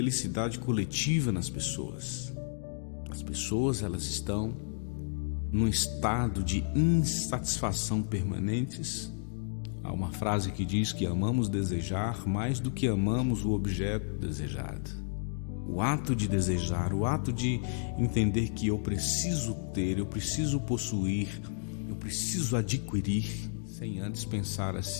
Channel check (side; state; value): right; silent; digital silence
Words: coletiva nas pessoas. As pessoas, elas estão num estado de insatisfação permanentes. Há uma frase que diz que amamos desejar mais do que amamos o objeto desejado. O ato de desejar, o ato de entender que eu preciso ter, eu preciso possuir, eu preciso adquirir, sem antes pensar